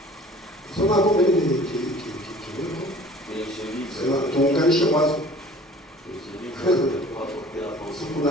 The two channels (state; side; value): normal; both; correlation 0.48